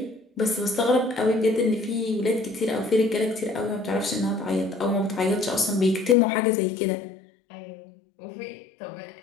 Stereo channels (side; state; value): right; drops out; at 6.2 s